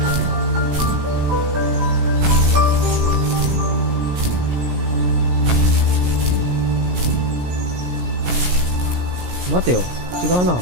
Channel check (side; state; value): left; late; 17 ms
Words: 待てよ、違うな。